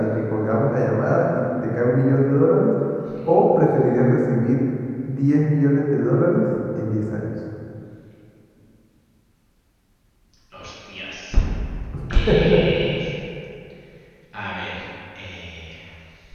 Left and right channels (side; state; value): both; identical; correlation 1.00